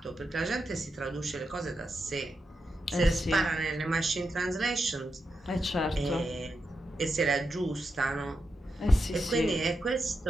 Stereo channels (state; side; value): normal; both; correlation 0.87